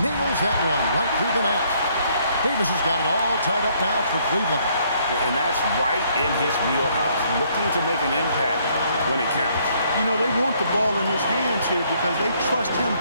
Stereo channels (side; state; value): both; inverted; correlation -0.67